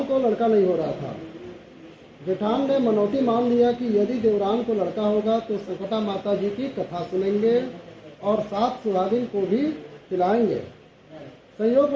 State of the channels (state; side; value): identical; both; correlation 1.00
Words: को लड़का नहीं हो रहा था। जेठान ने मनौती मान लिया कि यदि देवरान को लड़का होगा तो संकटा माता जी की कथा सुनेंगे और 7 सुहागिन को भी खिलाएंगे।